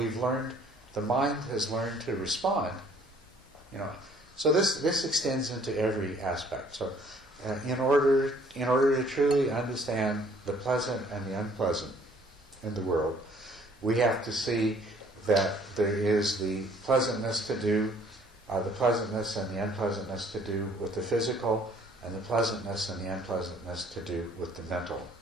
the mind has learned to respond. So this extends into every aspect. So in order to truly understand the pleasant and the unpleasant in the world, we have to see that there is the pleasantness and the unpleasantness to do with the physical, and the pleasantness and the unpleasantness to do with the mental.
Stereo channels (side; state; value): both; normal; correlation 0.59